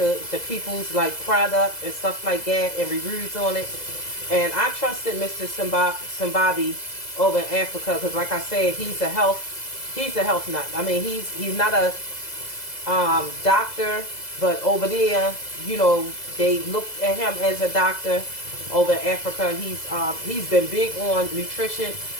people's like product and stuff like that and reviews on it. And I trusted Mr. Simbabi over in Africa because, like I said, he's a health nut. I mean, he's not a doctor, but over there, you know, they look at him as a doctor over in Africa. He's been big on nutrition.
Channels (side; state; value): right; late; 2.0 ms